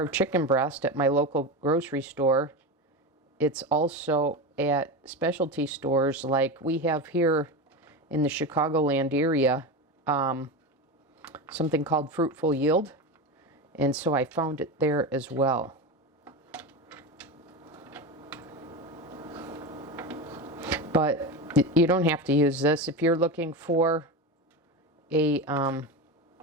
chicken breast at my local grocery store. It's also at specialty stores like we have here in the Chicagoland area, something called Fruitful Yield. And so I found it there as well. But you don't have to use this. If you're looking for a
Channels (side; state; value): both; normal; correlation 0.21